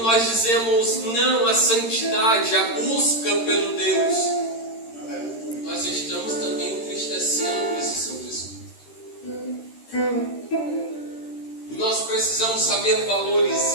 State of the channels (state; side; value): late; right; 13 ms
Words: dizemos não à santidade, à busca pelo Deus, nós estamos também entristecendo esse Santo Espírito. Nós precisamos saber